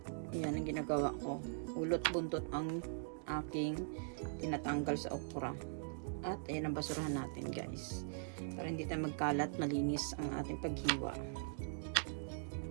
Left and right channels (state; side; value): silent; left; digital silence